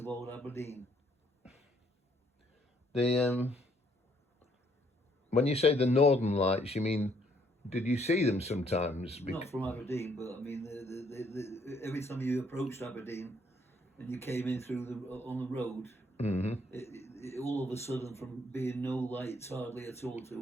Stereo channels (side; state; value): both; normal; correlation 0.68